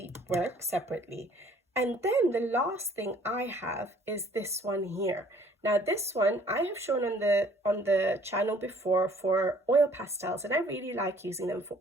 work separately. And then the last thing I have is this one here. Now this one I have shown on the channel before for oil pastels, and I really like using them for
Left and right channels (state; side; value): normal; both; correlation 0.57